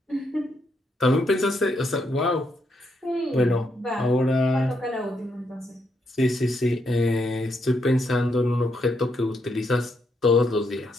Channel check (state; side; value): normal; both; correlation 0.78